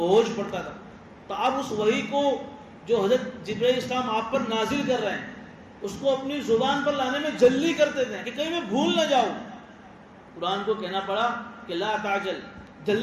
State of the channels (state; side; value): identical; both; correlation 1.00